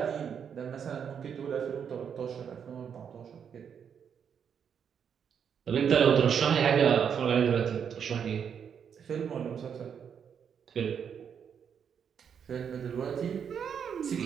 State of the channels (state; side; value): quieter; left; 7.6 dB